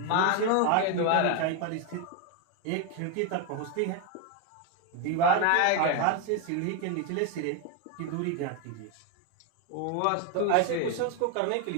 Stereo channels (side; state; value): both; different; correlation 0.01